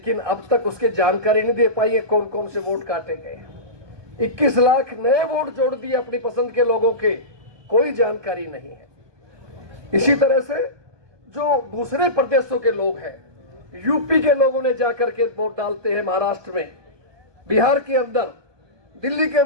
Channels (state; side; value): late; left; 1.2 ms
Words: अब तक उसकी जानकारी नहीं दे पाई है कौन कौन से वोट काटे गए। 21 लाख नए वोट जोड़ दिए अपनी पसंद के लोगों के, कोई जानकारी नहीं है। इसी तरह से जो दूसरे प्रदेशों के लोग हैं, यूपी के लोगों ने जाकर के वोट डालते हैं महाराष्ट्र में, बिहार के अंदर दिल्ली के